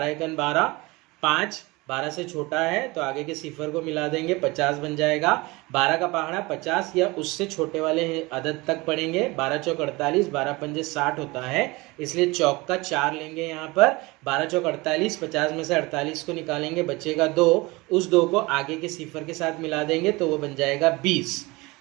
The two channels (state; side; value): quieter; left; 23.3 dB